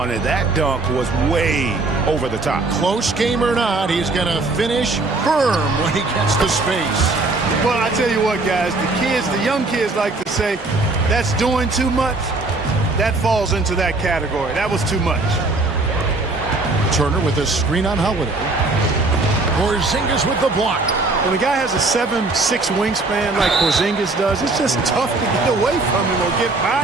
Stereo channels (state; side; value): quieter; left; 3.3 dB